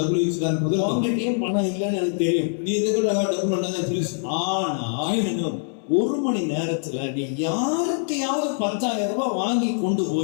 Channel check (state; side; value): silent; right; 63 dB below the other